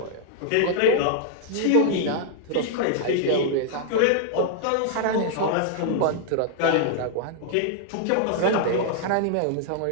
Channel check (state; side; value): different; both; correlation 0.00